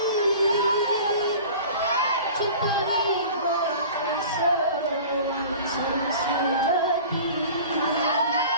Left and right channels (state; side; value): inverted; both; correlation -0.41